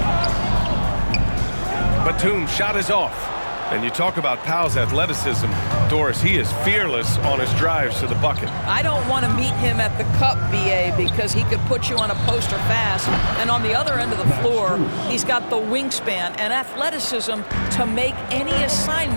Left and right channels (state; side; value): inverted; both; correlation -1.00